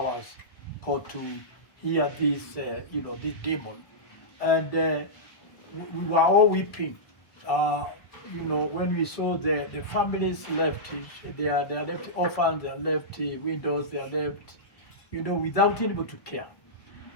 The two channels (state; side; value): late; right; 1.2 ms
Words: court to hear this, this demon. And we were all weeping. When we saw the families left, they are left orphans, they are left widows, they are left, without anybody to care.